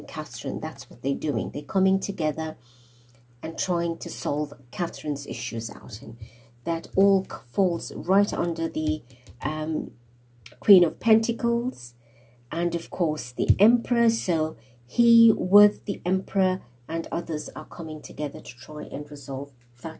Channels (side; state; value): both; identical; correlation 1.00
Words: Catherine. That's what they're doing. They're coming together and trying to solve Catherine's issues out. And that all falls right under the Queen of Pentacles and, of course, the Emperor. So he with the Emperor and others are coming together to try and resolve